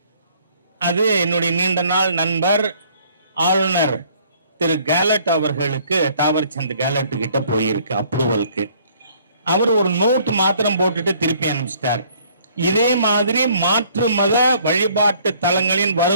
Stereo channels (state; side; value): inverted; both; correlation -0.60